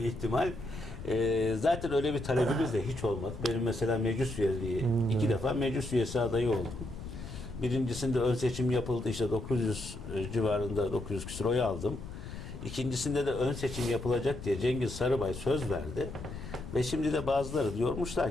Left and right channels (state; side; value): noise; left; rumble, 10 dB below the sound